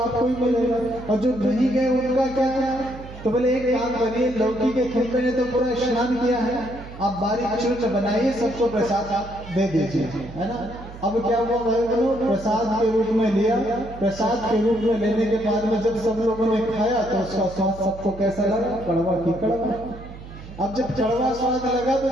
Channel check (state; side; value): noise; right; hum, 15 dB below the sound